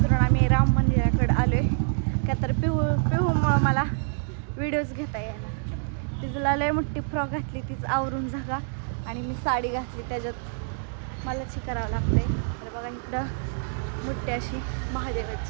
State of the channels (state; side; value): silent; left; 61 dB below the other